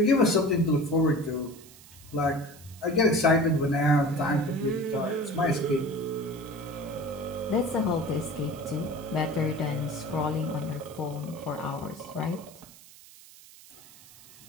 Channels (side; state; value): right; noise; hiss, 21 dB below the sound